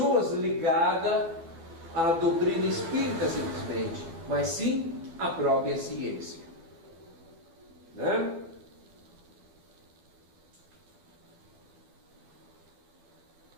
ligadas à doutrina espírita simplesmente, mas sim a própria ciência, né?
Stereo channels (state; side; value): late; left; 12 ms